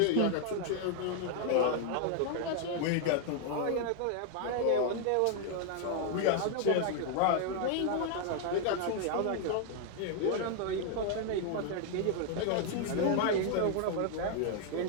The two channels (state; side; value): different; both; correlation 0.00